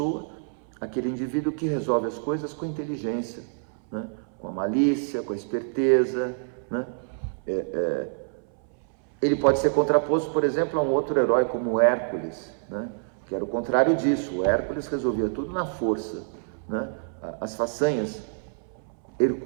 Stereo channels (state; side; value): silent; left; 60 dB below the other